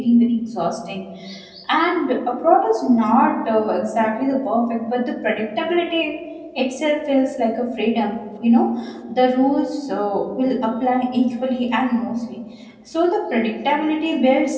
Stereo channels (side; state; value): both; identical; correlation 1.00